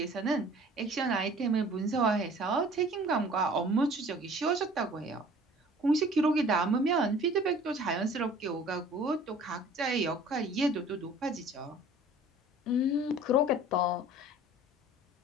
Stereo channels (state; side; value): normal; both; correlation 0.48